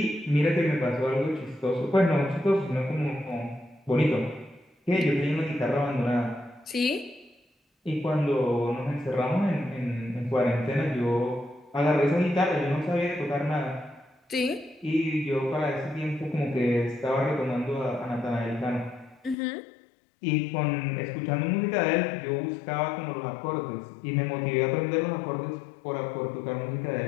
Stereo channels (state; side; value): drops out; right; at 19.4 s